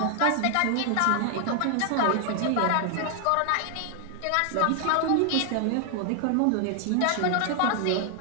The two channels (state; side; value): different; both; correlation 0.00